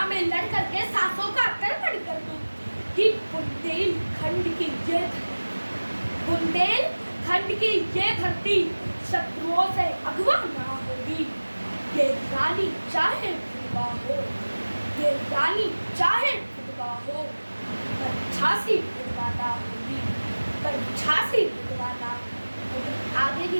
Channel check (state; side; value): inverted; both; correlation -1.00